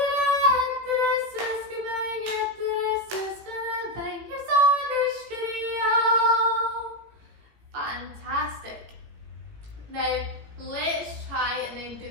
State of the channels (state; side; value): late; left; 17 ms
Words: Fantastic. Now let's try and then do